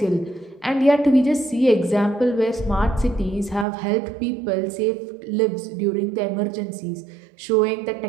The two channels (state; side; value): drops out; left; at 3.7 s